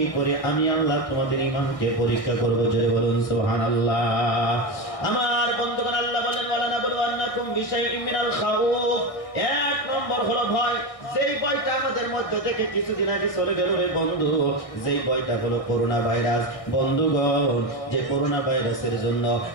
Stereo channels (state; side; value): late; right; 1.6 ms